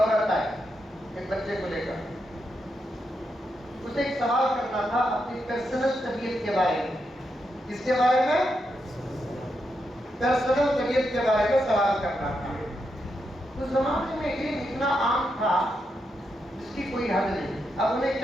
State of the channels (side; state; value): both; normal; correlation 0.83